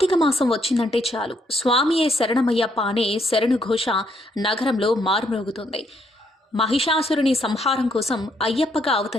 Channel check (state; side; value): normal; both; correlation 0.73